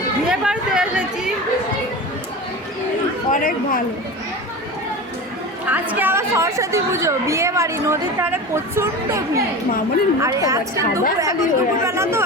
বিয়ে বাড়িতে এসেছি, অনেক ভালো। আজকে আবার সরস্বতী পুজো, বিয়ে বাড়ি, নদীর ধারে প্রচন্ড ভিড়। আর আজকে দুপুরবেলা তো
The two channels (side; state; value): both; normal; correlation 0.29